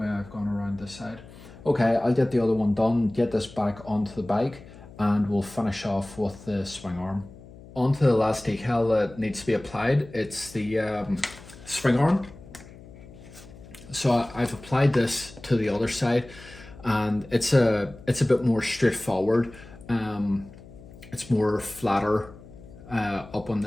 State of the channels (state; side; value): noise; left; hum, 19 dB below the sound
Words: I've gone around this side. Okay, I'll get the other one done, get this back onto the bike, and we'll finish off with the swing arm. Onto the last decal that needs to be applied, it's the swing arm. So I've applied this to the other side, and it's a bit more straightforward. It's more flatter up on